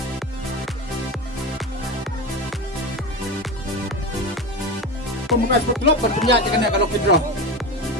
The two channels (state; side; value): normal; both; correlation 0.22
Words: Pembukaan sport club berpenjat kena kalau withdraw.